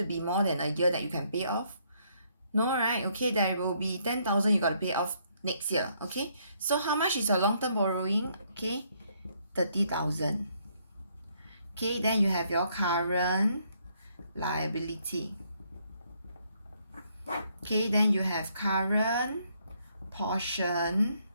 be more than a year that you can pay off? No, right? Okay, there will be 10,000 you got to pay off next year. Okay, so how much is your long-term borrowing? Okay, 30,000. Okay, then you have your current liability. Okay, then you have current portion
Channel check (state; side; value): inverted; both; correlation -0.70